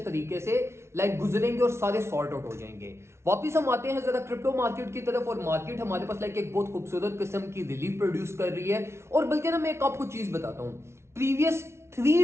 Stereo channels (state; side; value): late; left; 0.13 ms